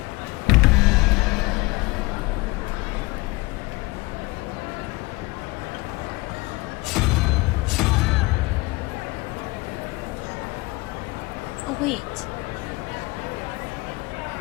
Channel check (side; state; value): right; quieter; 23.2 dB